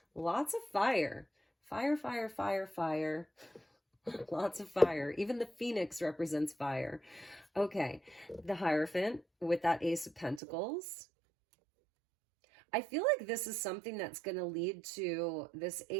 Lots of fire. Fire, fire, fire, fire. Lots of fire. Even the Phoenix represents fire. Okay, the Hierophant with that Ace of Pentacles. I feel like this is something that's going to lead to this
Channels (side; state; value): left; drops out; at 10.4 s